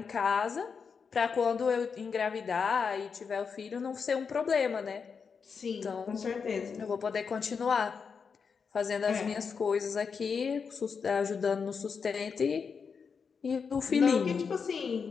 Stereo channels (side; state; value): right; quieter; 5.8 dB